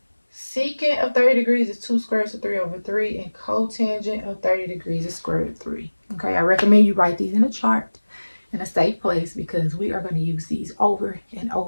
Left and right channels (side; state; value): both; inverted; correlation -1.00